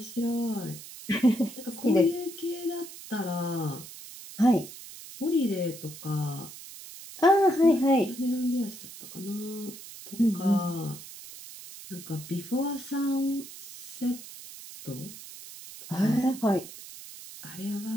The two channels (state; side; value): noise; right; hiss, 14 dB below the sound